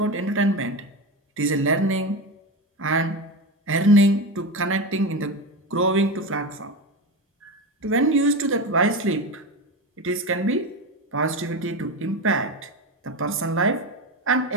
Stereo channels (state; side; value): normal; both; correlation 0.20